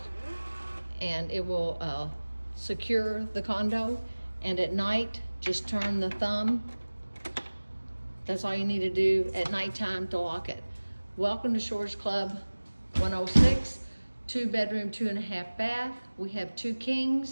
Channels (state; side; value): inverted; both; correlation -1.00